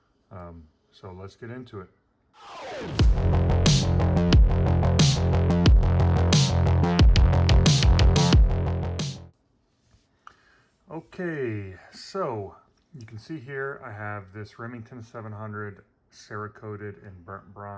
So let's get into it. Okay, so you can see here I have this Remington 700 Cerakoted in burnt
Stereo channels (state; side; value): identical; both; correlation 1.00